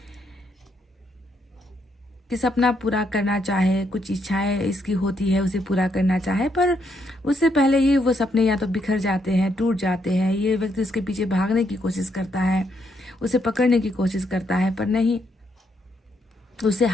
कि सपना पूरा करना चाहे, कुछ इच्छाएं इसकी होती है उसे पूरा करना चाहे, पर उससे पहले ही वो सपने या तो बिखर जाते हैं, टूट जाते हैं। ये व्यक्ति उसके पीछे भागने की कोशिश करता है, उसे पकड़ने की कोशिश करता है, पर नहीं, उसे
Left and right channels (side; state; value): both; normal; correlation 0.76